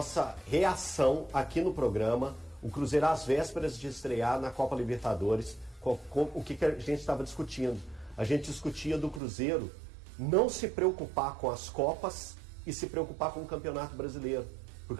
reação aqui no programa, o Cruzeiro às vésperas de estrear na Copa Libertadores, o que a gente estava discutindo. A gente discutia do Cruzeiro não se preocupar com as Copas e se preocupar com o Campeonato Brasileiro.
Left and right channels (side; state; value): left; drops out; at 9.2 s